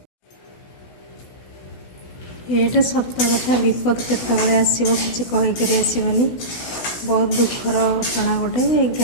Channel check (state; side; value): late; right; 16 ms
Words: ये सत कथा विपद केतबले आसो कि कहीकि आसबनी बहुत दुखर घटना गोटे